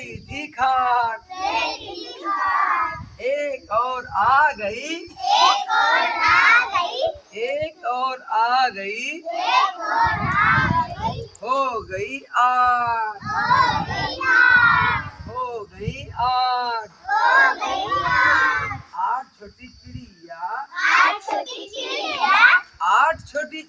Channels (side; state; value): both; identical; correlation 1.00